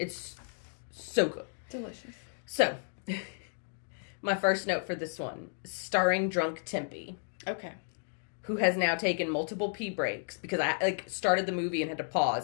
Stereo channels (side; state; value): right; silent; digital silence